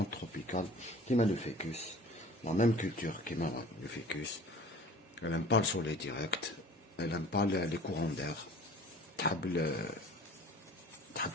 تروبيكال كيما لو فيكوس، لا ميم كولتور كيما لو فيكوس. Elle aime pas le soleil direct, elle aime pas les courants d'air. تحب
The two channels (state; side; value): normal; both; correlation 0.45